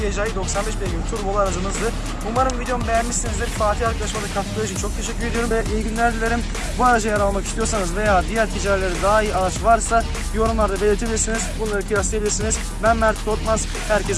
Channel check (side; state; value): both; identical; correlation 1.00